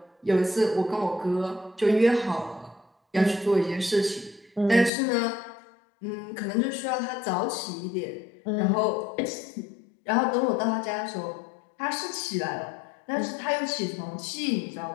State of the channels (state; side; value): drops out; right; at 4.9 s